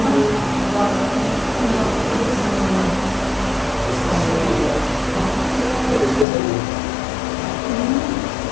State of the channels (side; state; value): right; drops out; at 6.2 s